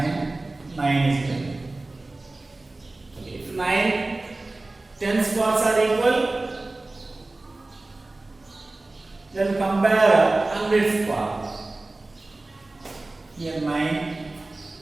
9 is given. Okay. If 9 tens parts are equal, then compare hundredth part. Here 9,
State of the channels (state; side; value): quieter; left; 3.0 dB